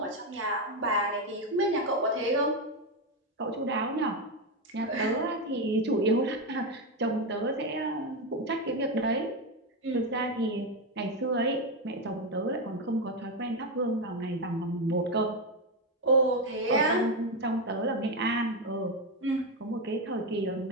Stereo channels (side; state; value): both; normal; correlation 0.10